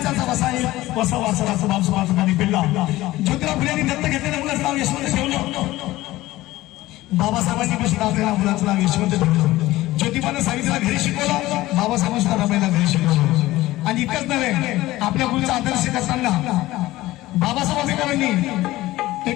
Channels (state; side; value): quieter; right; 17.2 dB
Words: वसा वासनाचा बाप सुभाषांनी पिल्ला. ज्योतिबा फुलेंनी दत्त घेतलेल्या मुलाचं नाव यशवंत ठेवलं. बाबासाहेबांनी पण आपल्याला मुलाचं नाव यशवंत ठेवलं. ज्योतिबानं सावित्रीला घरी शिकवलं, बाबासाहेबांना रमाईला घरी शिकवलं. आणि इतकंच नव्हे, आपल्या मुलीचा आदर्श करताना बाबासाहेब आंबेडकरांनी